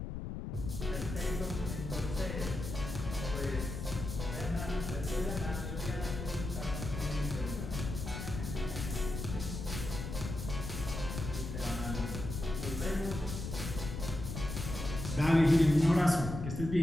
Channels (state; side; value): noise; left; rumble, 5 dB below the sound